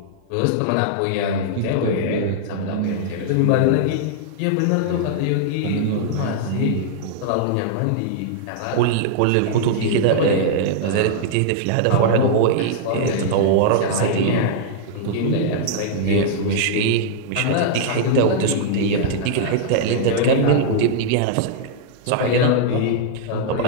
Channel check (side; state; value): both; different; correlation -0.01